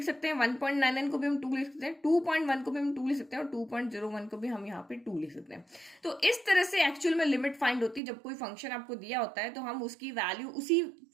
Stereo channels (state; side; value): drops out; left; at 8.0 s